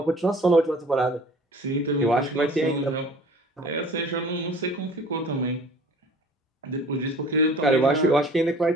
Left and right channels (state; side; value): normal; both; correlation 0.48